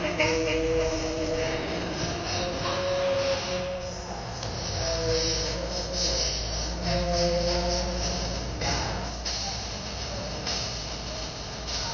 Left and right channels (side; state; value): both; identical; correlation 1.00